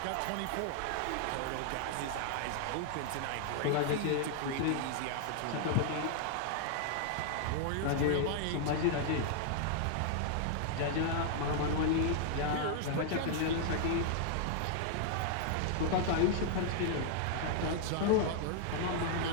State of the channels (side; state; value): both; different; correlation -0.01